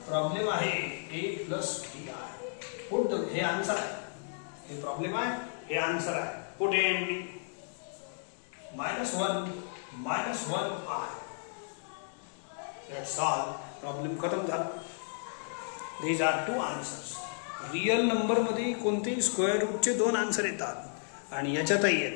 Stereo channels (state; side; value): silent; right; digital silence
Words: प्रॉब्लेम आहे. a प्लस b आहे. पुट हे आन्सर आहे. हे प्रॉब्लेम आहे. हे आन्सर आहे. Put a and b. -1 -1i. That's all. Problem खतम झाला. These are 2 answers. Real number मध्ये कोणतेही स्क्वेअर रूटचे 2 आन्सर येतात आणि याच्यातही